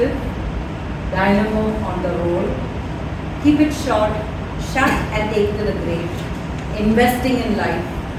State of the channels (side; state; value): both; identical; correlation 1.00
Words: dynamo on the roll, keep it short, shut and take to the grave, investing in life,